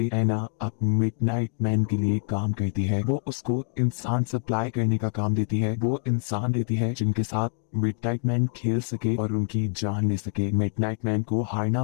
एना अब मिडनाइट मैन के लिए काम करती है। वो उसको इंसान सप्लाई करने का काम देती है। वो इंसान देती है जिनके साथ मिडनाइट मैन खेल सके और उनकी जान ले सके। मिडनाइट मैन को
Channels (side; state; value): right; silent; digital silence